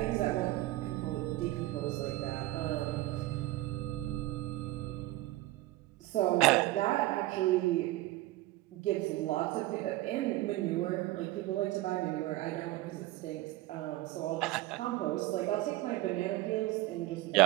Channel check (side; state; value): left; quieter; 17.8 dB